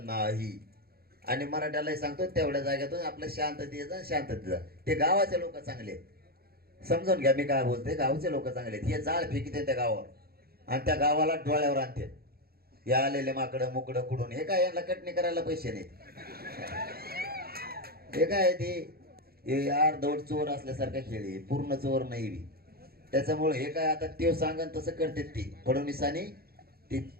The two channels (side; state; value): left; late; 0.45 ms